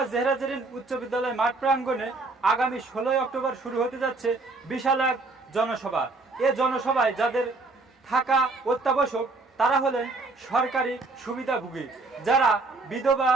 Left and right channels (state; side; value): quieter; left; 3.4 dB